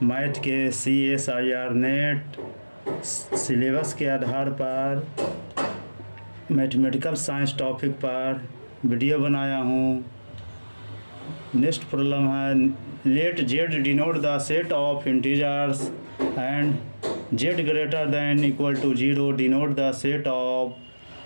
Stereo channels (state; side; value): inverted; both; correlation -1.00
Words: मैथ के CSIR नेट सिलेबस के आधार पर मैथमेटिकल साइंस टॉपिक पर वीडियो बनाया हूँ। नेक्स्ट प्रॉब्लम है, let Z denote the set of integers and Z greater than equal to 0 denote the set